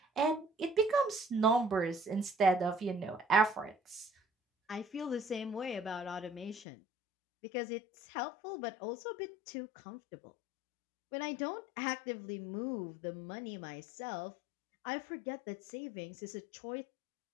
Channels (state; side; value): drops out; right; at 6.7 s